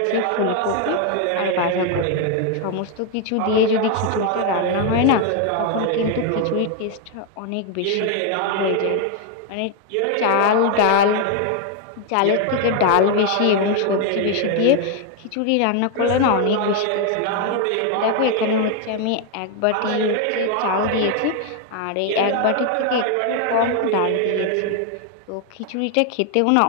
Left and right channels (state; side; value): different; both; correlation 0.01